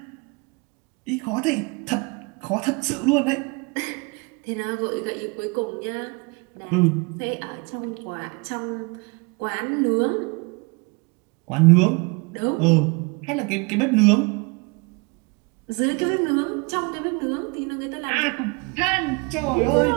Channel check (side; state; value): left; quieter; 29.2 dB